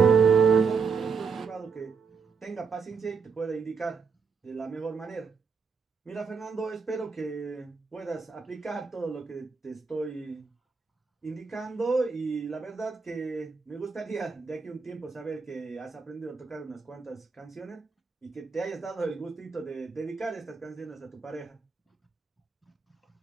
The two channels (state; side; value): quieter; left; 5.4 dB